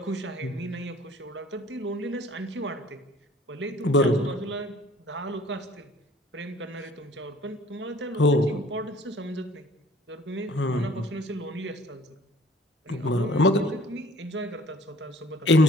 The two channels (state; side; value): normal; both; correlation 0.52